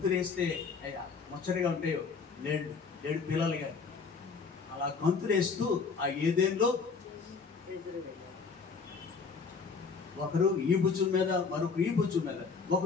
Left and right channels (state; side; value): quieter; right; 5.1 dB